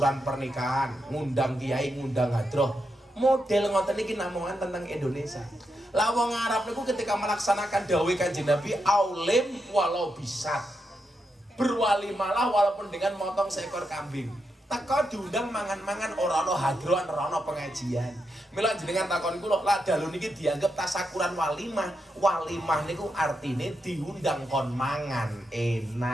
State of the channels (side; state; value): both; normal; correlation 0.85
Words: pernikahan, ngundang kiai, ngundang hadroh. Model ngoten iki namungan tentang Indonesia. Lah wong Arab niku ketika melaksanakan dawuh Kanjeng Nabi, aulim walau bisat. Berwalimalah walaupun dengan motong seekor kambing. Teko diundang mangan-mangan ora ana hadrohan, ora ana pengajian. Mila jenengan takon kula, lah dalu niki dianggap tasyakuran walimah. Walimah niku artine diundang kon mangan